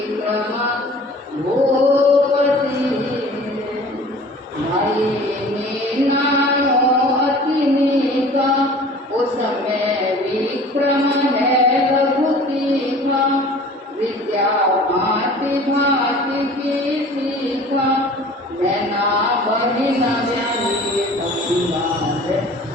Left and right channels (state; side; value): normal; both; correlation 0.45